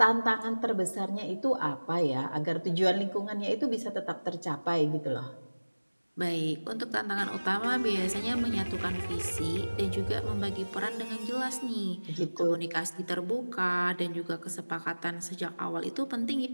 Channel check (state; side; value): inverted; both; correlation -1.00